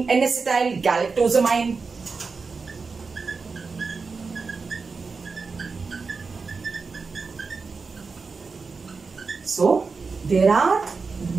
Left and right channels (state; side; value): quieter; left; 4.6 dB